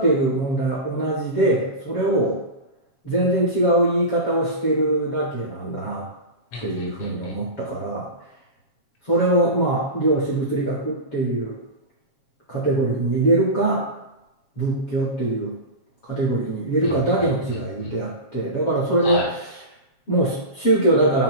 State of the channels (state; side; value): late; right; 7.3 ms